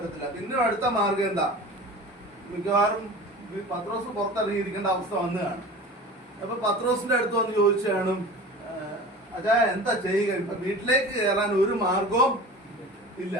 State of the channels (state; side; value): normal; both; correlation 0.36